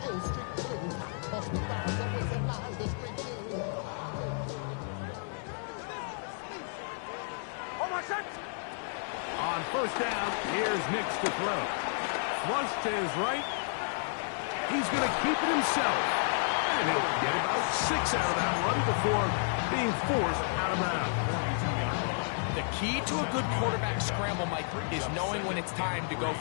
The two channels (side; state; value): right; silent; digital silence